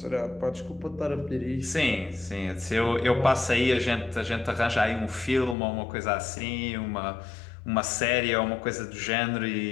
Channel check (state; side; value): drops out; right; at 5.6 s